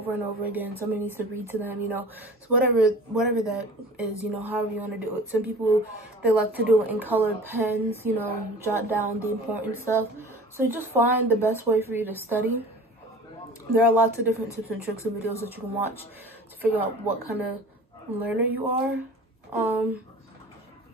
and over again. Somebody needs to read to them, you know. So whatever that is, you know, however you want to do it. Some people, they like to do it in colored pens, you know, jot down the important stuff. So you just find the best way for you to study. There are lots of different tips and tricks and videos that you can watch to figure out what kind of learner you are.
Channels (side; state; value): both; normal; correlation 0.42